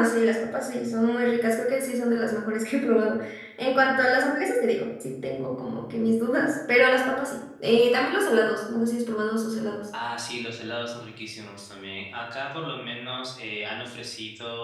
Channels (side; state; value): both; identical; correlation 1.00